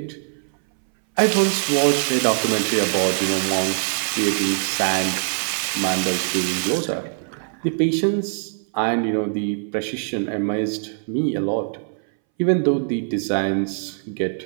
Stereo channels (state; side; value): silent; left; 62 dB below the other